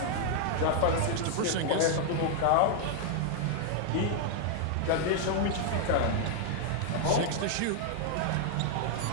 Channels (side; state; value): both; different; correlation 0.00